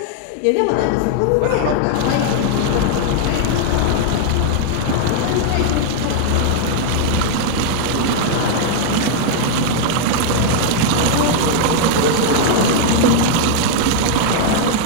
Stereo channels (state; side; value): different; both; correlation 0.00